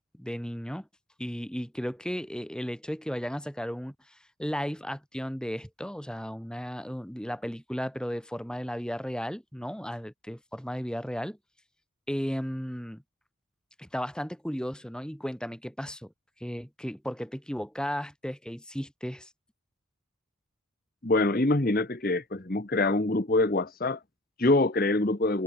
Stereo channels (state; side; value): normal; both; correlation 0.56